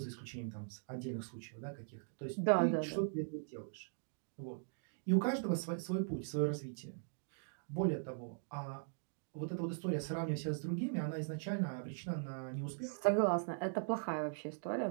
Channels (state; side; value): silent; left; digital silence